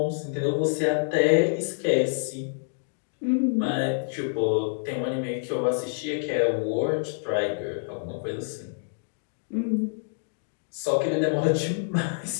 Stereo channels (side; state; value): right; silent; digital silence